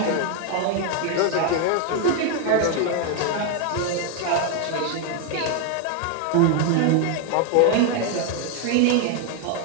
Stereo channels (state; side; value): different; both; correlation 0.01